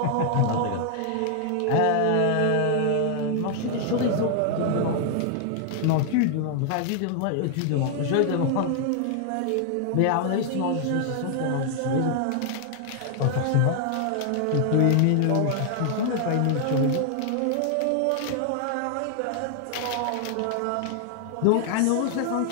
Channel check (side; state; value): both; different; correlation 0.00